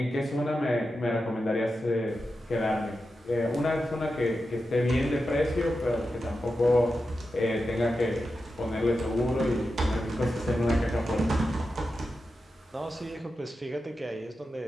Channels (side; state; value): both; normal; correlation 0.90